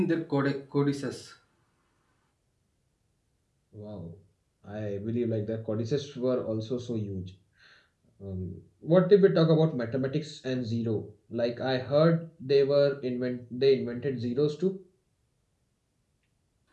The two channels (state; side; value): identical; both; correlation 1.00